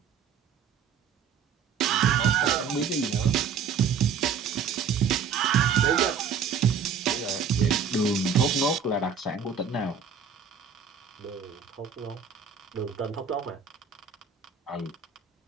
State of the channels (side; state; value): left; quieter; 6.6 dB